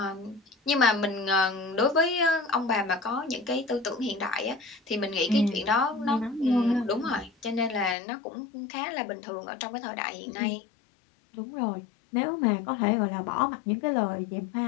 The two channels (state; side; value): drops out; right; at 8.0 s